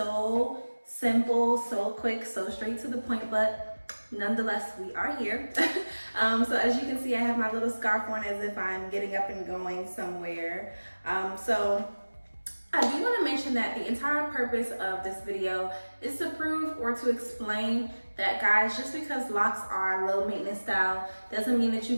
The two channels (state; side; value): inverted; both; correlation -1.00